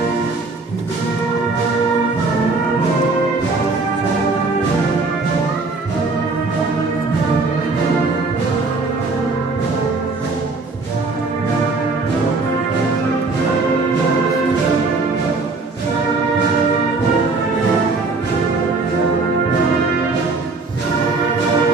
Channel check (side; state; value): left; quieter; 3.7 dB